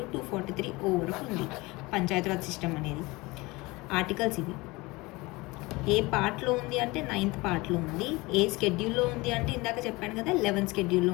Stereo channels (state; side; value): quieter; right; 22.8 dB